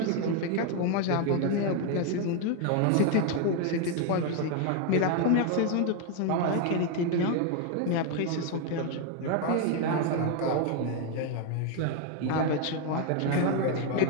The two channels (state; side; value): different; both; correlation 0.01